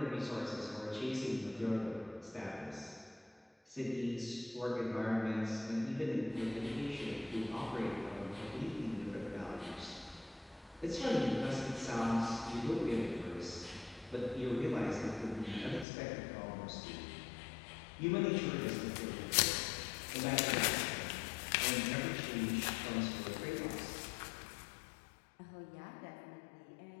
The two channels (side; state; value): right; drops out; at 15.9 s